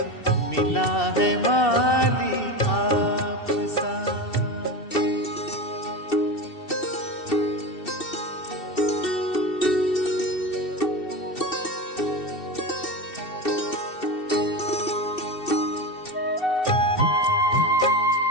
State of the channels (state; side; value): late; right; 2.7 ms